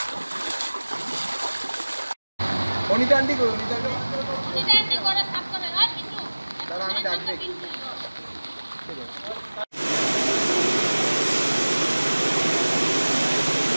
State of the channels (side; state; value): both; inverted; correlation -1.00